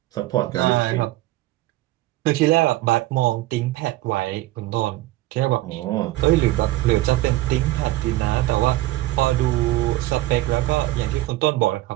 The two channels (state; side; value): quieter; left; 17.2 dB